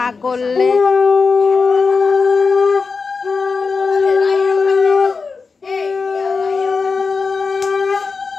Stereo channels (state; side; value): quieter; right; 4.7 dB